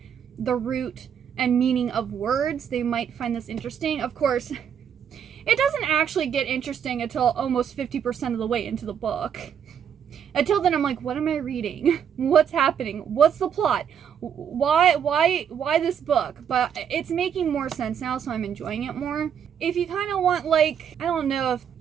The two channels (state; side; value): quieter; left; 8.2 dB